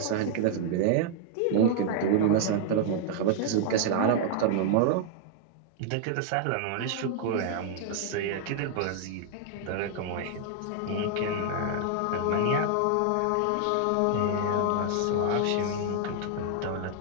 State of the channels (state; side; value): different; both; correlation 0.00